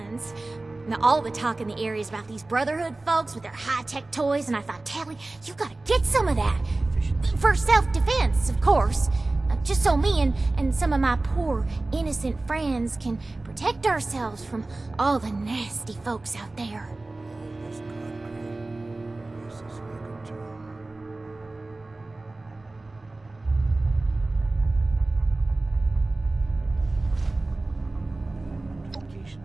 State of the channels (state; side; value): quieter; left; 3.0 dB